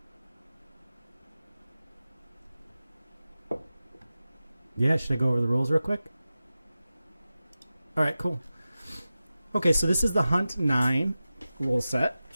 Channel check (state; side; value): inverted; both; correlation -0.94